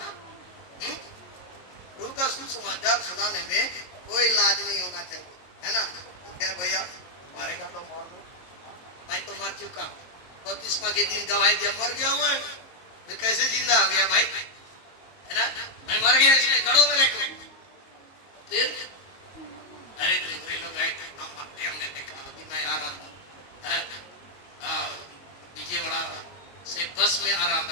प्रभु का सुसमाचार सुनाने में कोई लाज नहीं होना चाहिए, है ना। क्या भैया मारेगा तो मार दो, मैं तो मर चुका, बपतिस्मा के दिन गवाही दिया, मर गया मैं, फिर कैसे जिंदा हो गया भाई, है ना। मैं मर गया इसलिए गड़ों में रखो, फिर अरे दूसरे लोग आए थे, हम मरते, हमने देखा। अभी मैं आ रहा था विजयवाड़ा से बस में आ रहा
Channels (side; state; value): right; late; 22 ms